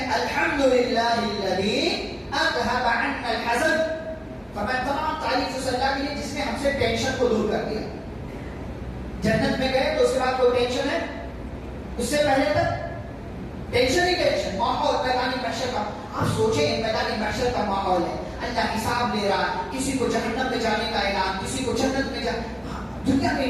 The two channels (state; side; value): identical; both; correlation 1.00